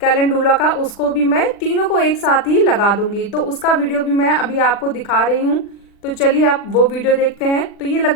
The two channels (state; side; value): late; right; 40 ms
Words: कैलेंडुला का, उसको भी मैं तीनों को एक साथ ही लगा दूंगी। तो उसका वीडियो भी मैं अभी आपको दिखा रही हूँ। तो चलिए आप वो वीडियो देखते हैं। तो ये